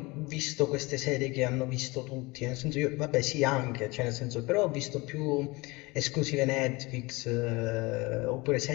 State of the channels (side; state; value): right; quieter; 23.8 dB